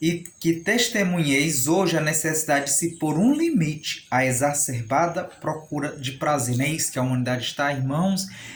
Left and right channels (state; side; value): identical; both; correlation 1.00